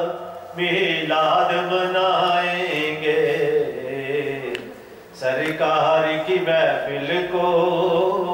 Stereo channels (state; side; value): identical; both; correlation 1.00